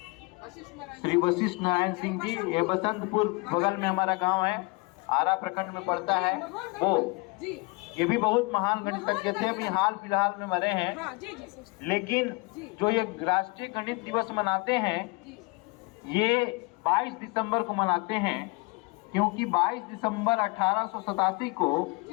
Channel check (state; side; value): quieter; right; 28.0 dB